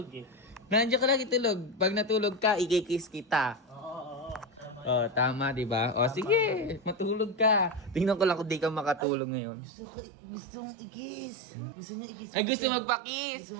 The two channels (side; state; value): left; drops out; at 9.1 s